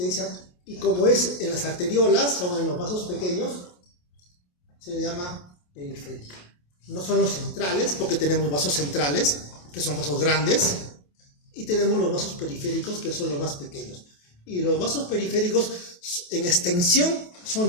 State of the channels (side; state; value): right; late; 28 ms